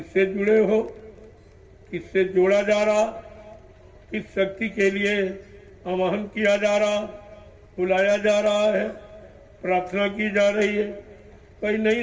जुड़े हो, किससे जोड़ा जा रहा, किस शक्ति के लिए आवाहन किया जा रहा, बुलाया जा रहा है, प्रार्थना की जा रही है। कोई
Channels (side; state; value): both; identical; correlation 1.00